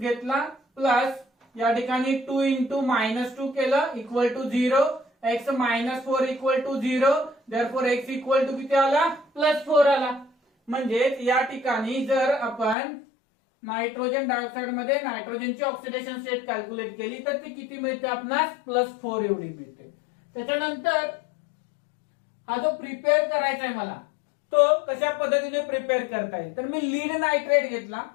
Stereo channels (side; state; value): right; drops out; at 12.8 s